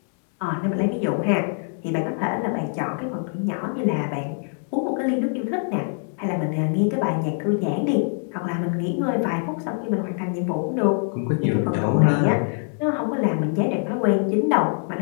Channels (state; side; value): silent; right; 57 dB below the other